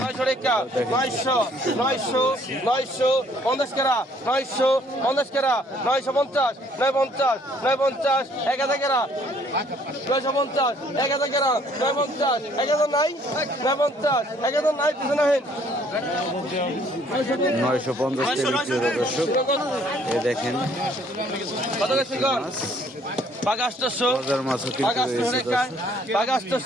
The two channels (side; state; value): both; normal; correlation 0.62